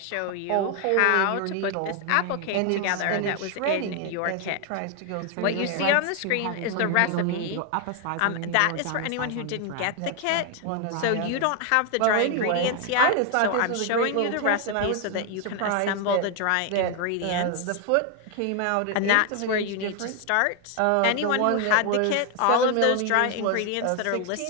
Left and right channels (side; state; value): both; different; correlation 0.01